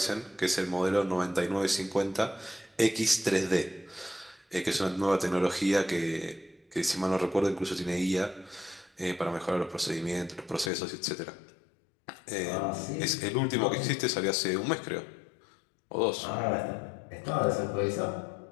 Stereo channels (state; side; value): drops out; right; at 10.7 s